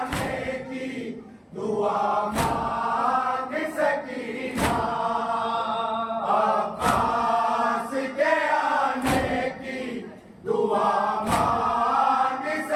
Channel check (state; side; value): identical; both; correlation 1.00